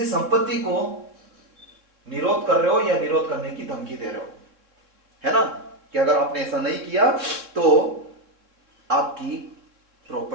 संपत्ति को निरोध कर रहे हो या निरोध करने की धमकी दे रहे हो, है ना। कि अगर आपने ऐसा नहीं किया तो आपकी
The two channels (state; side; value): late; left; 3.6 ms